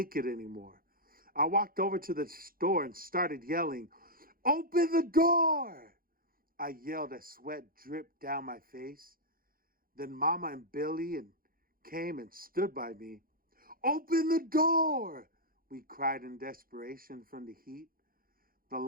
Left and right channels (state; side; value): late; left; 0.42 ms